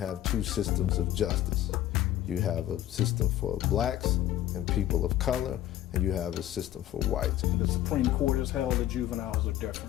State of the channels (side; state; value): right; quieter; 13.0 dB